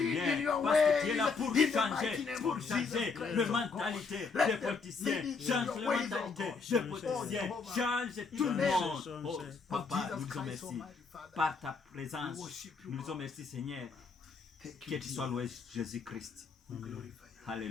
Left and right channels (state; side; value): quieter; right; 4.8 dB